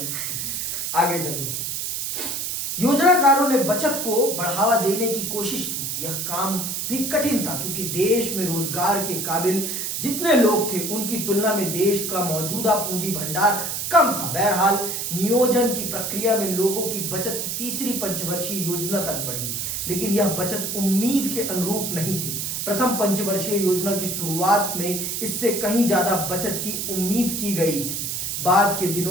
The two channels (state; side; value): noise; right; hiss, 3 dB below the sound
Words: आगे चलो। योजनाकारों ने बचत को बढ़ावा देने की कोशिश की। यह काम भी कठिन था क्योंकि देश में रोजगार के काबिल जितने लोग थे उनकी तुलना में देश का मौजूदा पूंजी भंडार कम था। बहरहाल नियोजन की प्रक्रिया में लोगों की बचत तीसरी पंचवर्षीय योजना तक बढ़ी, लेकिन यह बचत उम्मीद के अनुरूप नहीं थी। प्रथम पंचवर्षीय योजना की शुरुआत में इससे कहीं ज्यादा बचत की उम्मीद की गई थी। बाद के